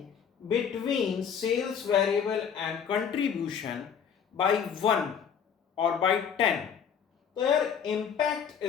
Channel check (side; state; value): right; quieter; 7.5 dB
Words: between sales variable and contribution by 1 or by 10, their impact